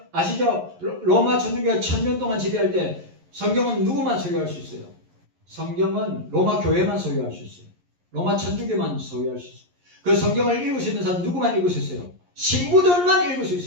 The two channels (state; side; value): late; left; 11 ms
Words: 아시죠? 로마 천주교가 1000년 동안 지배할 때 성경은 누구만 소유할 수 있어요? 성경은 로마 교회만 소유할 수 있어요. 로마 천주교만 소유할 수 있어요. 그 성경을 읽을 수 있는 사람 누구만 읽을 수 있어요? 신부들만 읽을 수